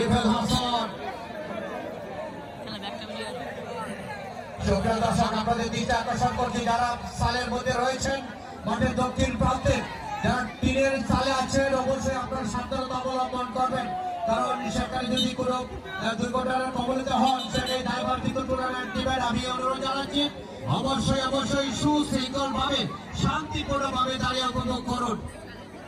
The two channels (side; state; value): both; identical; correlation 1.00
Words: হাসান। সুপ্রিয় দর্শক, আপনাদের দৃষ্টি আকর্ষণ করছি যারা সালের মধ্যে রয়েছেন মাঠের দক্ষিণ প্রান্তে, যারা টিনের চালে আছেন অবশ্যই আপনার সাবধানতা অবলম্বন করবেন, কারণ সেখানে যদি কোনো দুর্ঘটনার কবলিত হন সেটাই দায়ভার কিন্তু টুর্নামেন্ট টিমের। আমি অনুরোধ জানাচ্ছি অবশ্যই সুশৃঙ্খল ভাবে শান্তিপূর্ণ ভাবে দাঁড়িয়ে উপভোগ করুন।